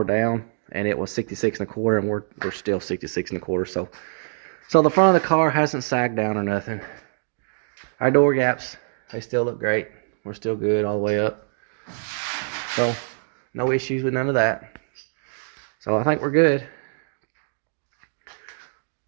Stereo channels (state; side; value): silent; left; digital silence